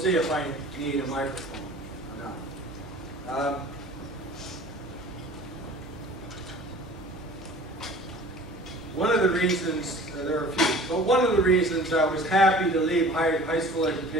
if I need a microphone or not. One of the reasons, there are a few, but one of the reasons I was happy to leave high school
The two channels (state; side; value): normal; both; correlation 0.45